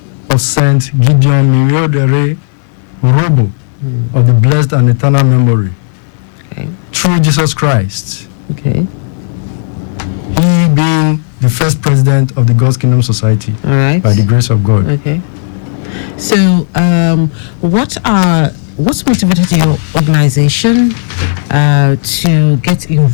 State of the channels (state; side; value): silent; right; 73 dB below the other